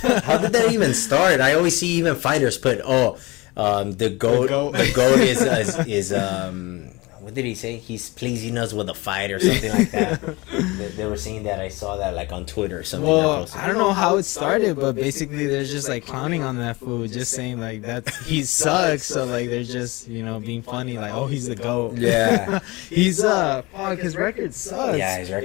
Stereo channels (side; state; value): right; quieter; 23.4 dB